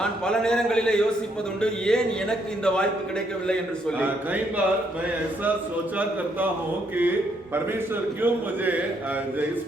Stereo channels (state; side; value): normal; both; correlation 0.73